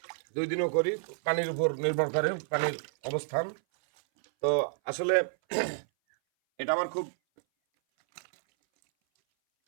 2 দিনও করি। পানির উপর নির্ভর করে পানির অবস্থান। তো আসলে এটা আমার খুব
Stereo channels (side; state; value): left; silent; 58 dB below the other